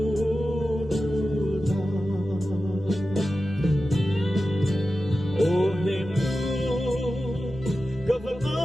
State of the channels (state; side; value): normal; both; correlation 0.93